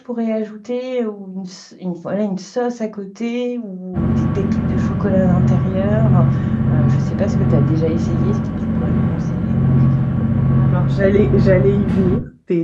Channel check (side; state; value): both; identical; correlation 1.00